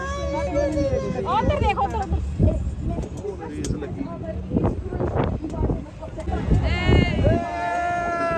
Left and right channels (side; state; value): both; identical; correlation 1.00